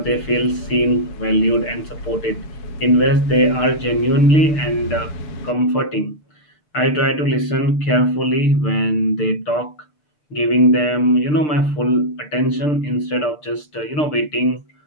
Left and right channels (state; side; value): late; right; 6.7 ms